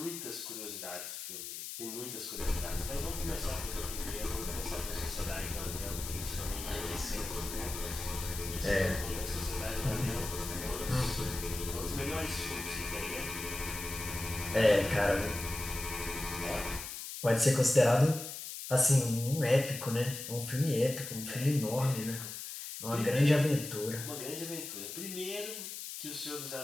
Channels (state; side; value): noise; left; hiss, 8 dB below the sound